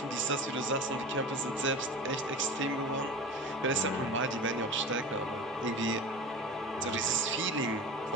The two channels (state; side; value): normal; both; correlation 0.33